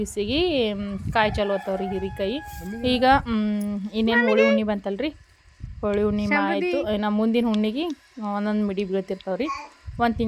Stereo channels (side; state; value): both; identical; correlation 1.00